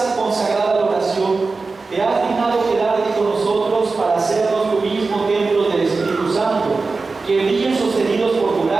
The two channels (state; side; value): quieter; left; 4.0 dB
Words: consagrada a la oración te has dignado quedarte con nosotros para hacernos tu mismo templo del Espíritu Santo, que brillen sostenidos por tu